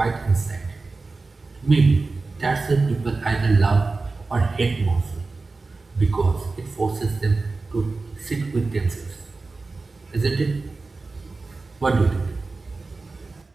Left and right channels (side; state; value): left; quieter; 3.8 dB